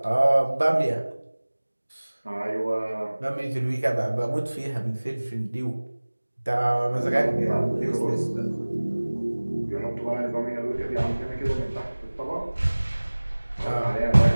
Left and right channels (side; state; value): both; inverted; correlation -1.00